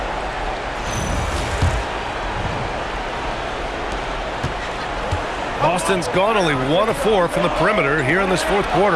Boston's gone only 1 of 4 from the perimeter here in this fourth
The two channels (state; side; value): identical; both; correlation 1.00